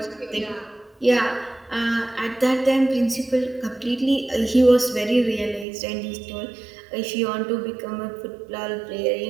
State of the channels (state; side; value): drops out; left; at 5.7 s